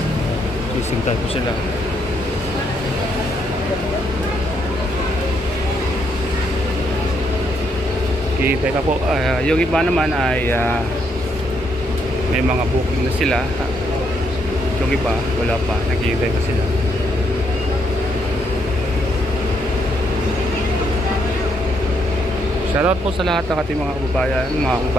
Isintay po sila. Kita pa po. Yung iba naman ay may mga booking na sila. Yung iba wala pa. Naghihintay pa sila. Shoutout po sa lahat ng ating mga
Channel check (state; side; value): normal; both; correlation 0.75